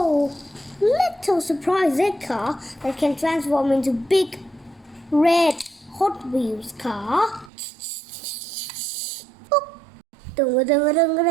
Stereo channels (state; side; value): drops out; left; at 7.5 s